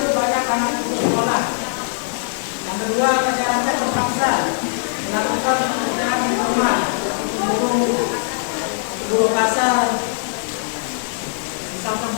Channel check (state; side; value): silent; right; digital silence